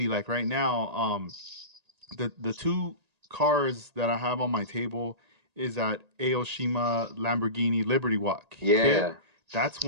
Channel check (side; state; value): left; late; 1.8 ms